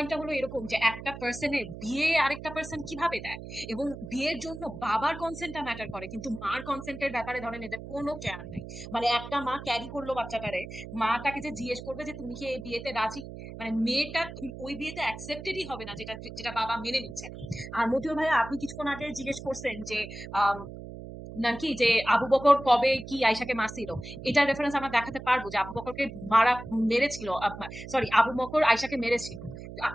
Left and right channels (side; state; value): right; noise; hum, 11 dB below the sound